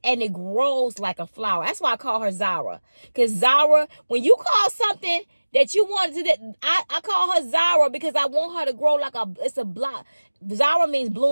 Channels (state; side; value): inverted; both; correlation -1.00